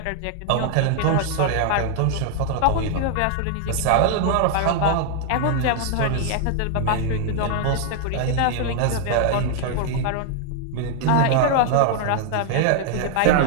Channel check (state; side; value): different; both; correlation 0.00